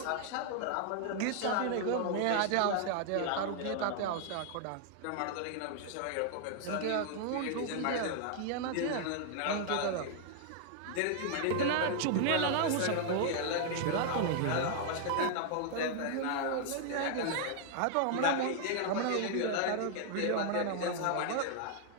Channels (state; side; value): different; both; correlation 0.00